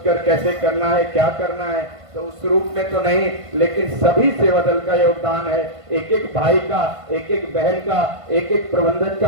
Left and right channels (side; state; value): left; late; 1.5 ms